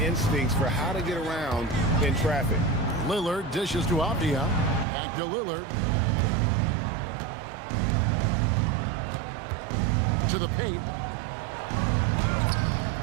instincts for how to get around in traffic. Lillard dishes to Avdia. Back to Lillard. To the paint.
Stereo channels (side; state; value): left; drops out; at 4.9 s